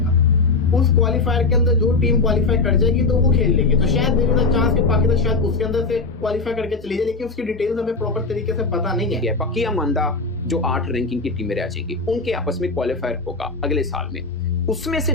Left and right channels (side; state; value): right; quieter; 3.8 dB